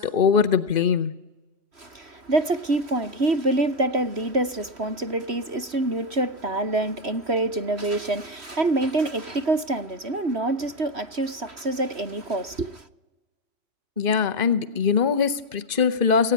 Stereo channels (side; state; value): left; late; 3.1 ms